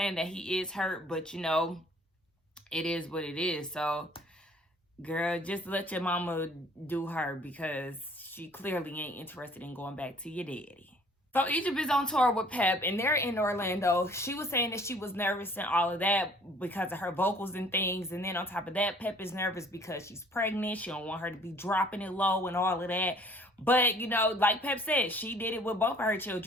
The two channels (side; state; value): both; normal; correlation 0.55